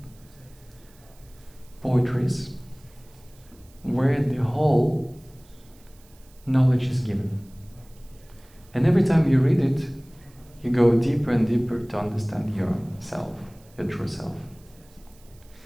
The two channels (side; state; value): right; noise; hiss, 28 dB below the sound